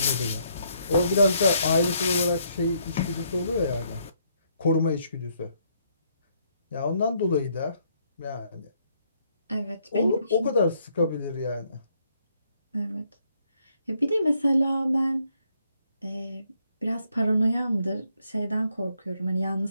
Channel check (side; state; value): both; inverted; correlation -0.71